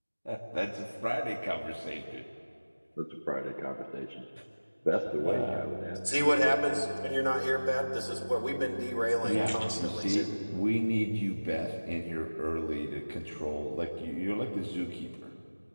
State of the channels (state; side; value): inverted; both; correlation -1.00